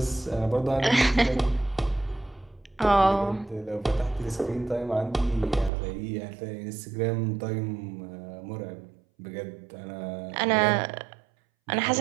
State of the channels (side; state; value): left; drops out; at 5.7 s